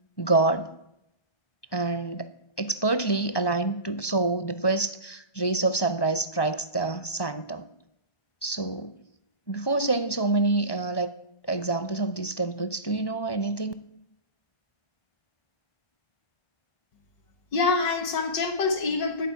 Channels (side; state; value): right; late; 1.1 ms